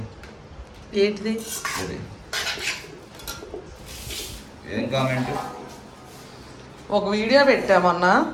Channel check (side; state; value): both; identical; correlation 1.00